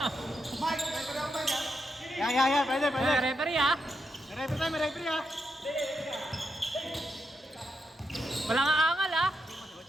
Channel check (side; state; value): both; normal; correlation 0.84